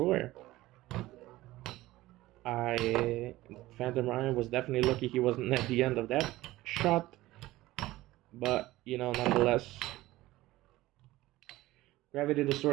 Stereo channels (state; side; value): quieter; left; 17.4 dB